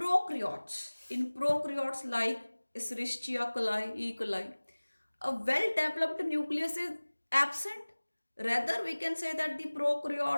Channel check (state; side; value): inverted; both; correlation -1.00